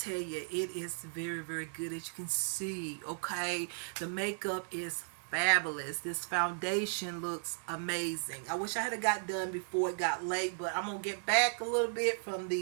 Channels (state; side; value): silent; left; digital silence